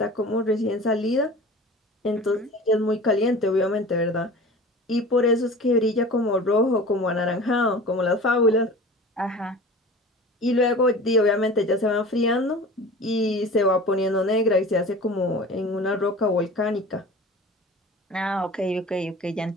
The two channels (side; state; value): both; normal; correlation 0.39